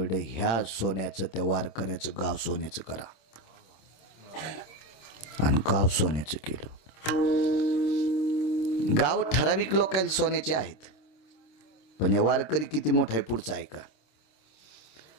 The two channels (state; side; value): late; right; 26 ms